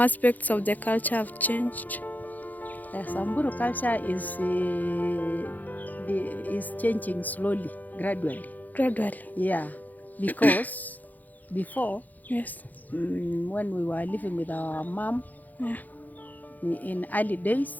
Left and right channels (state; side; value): late; right; 0.082 ms